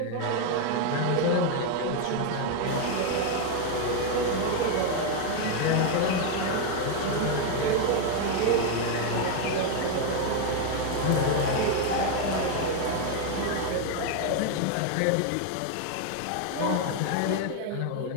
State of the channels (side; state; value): both; different; correlation 0.01